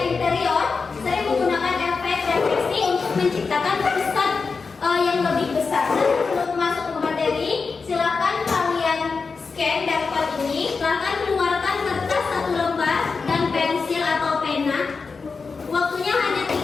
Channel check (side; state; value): right; quieter; 4.7 dB